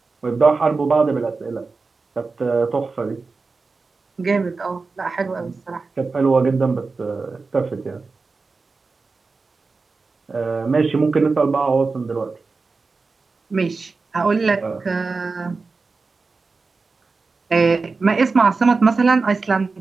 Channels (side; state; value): left; quieter; 4.2 dB